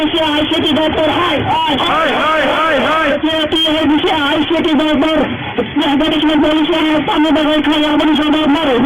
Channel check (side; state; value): both; identical; correlation 1.00